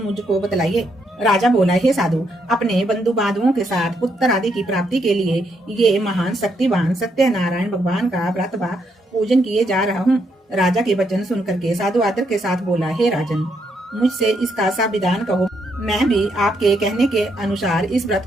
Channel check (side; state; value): both; normal; correlation 0.76